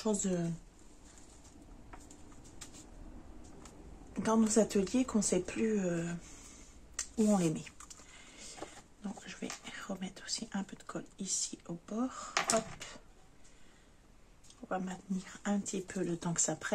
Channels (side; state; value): both; identical; correlation 1.00